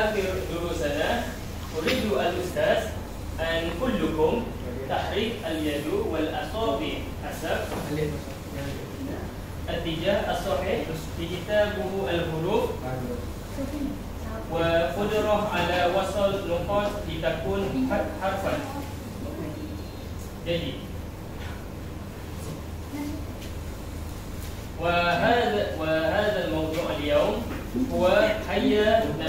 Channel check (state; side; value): identical; both; correlation 1.00